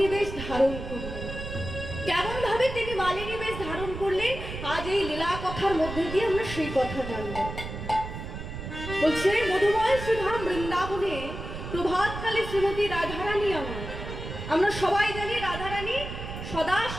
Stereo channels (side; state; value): right; noise; rumble, 8 dB below the sound